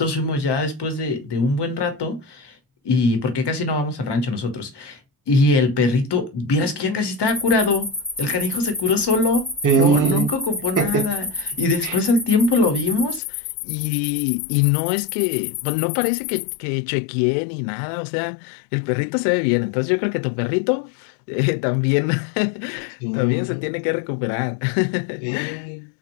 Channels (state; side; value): drops out; right; at 13.2 s